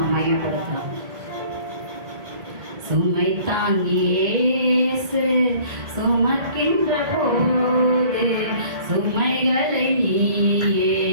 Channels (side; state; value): left; late; 2.2 ms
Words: மகிமைப்படுத்தலாம். சுமை தாங்கியேசு சுமக்கின்ற போது சுமைகளை நீயே